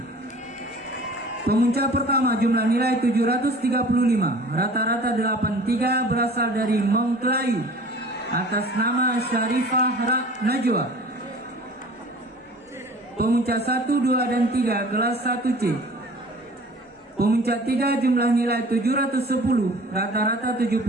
Pemuncak pertama jumlah nilai 735, rata-rata 83 berasal dari Mongklayu atas nama Syarifah Najwa. Pemuncak 1, 2, dan 3 kelas 1C. Pemuncak 3 jumlah nilai 710, rata-rata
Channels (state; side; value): normal; both; correlation 0.45